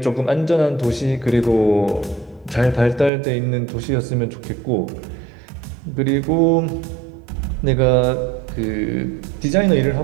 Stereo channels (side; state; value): left; drops out; at 3.1 s